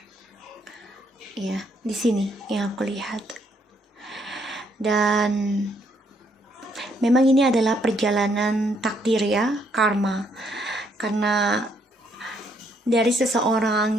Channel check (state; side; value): normal; both; correlation 0.71